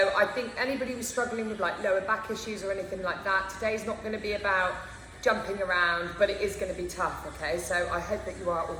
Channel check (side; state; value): both; identical; correlation 1.00